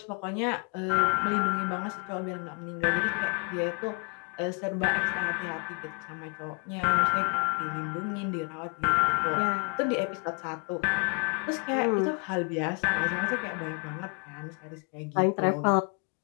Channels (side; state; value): right; quieter; 37.3 dB